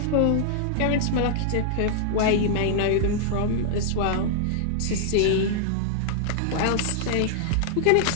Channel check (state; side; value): different; both; correlation -0.01